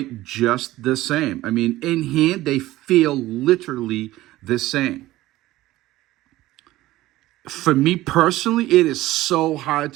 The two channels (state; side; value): quieter; left; 16.5 dB